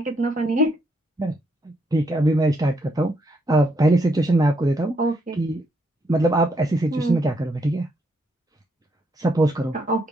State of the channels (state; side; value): normal; both; correlation 0.75